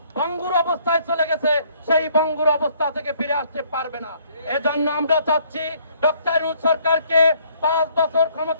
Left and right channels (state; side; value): inverted; both; correlation -0.63